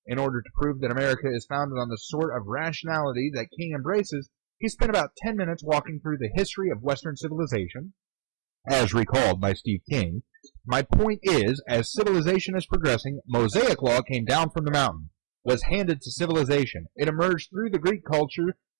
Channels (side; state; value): left; silent; digital silence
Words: In order to prove that America is founded on the sort of rationality that King embraces, he spent about 10 minutes walking through the history of Western civilization, as recalled by Steve King. My point is, as civilization is progressing, Mosaic law came down from the mountain, was handed to civilization. It emerged through the Greek culture,